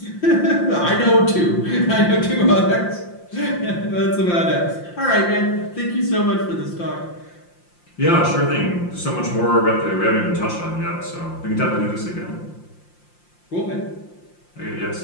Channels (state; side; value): late; right; 5.7 ms